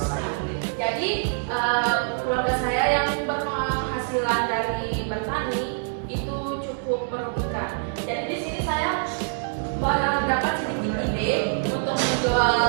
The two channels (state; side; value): silent; left; digital silence